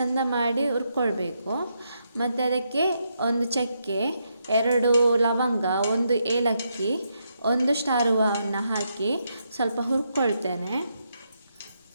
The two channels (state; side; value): inverted; both; correlation -0.80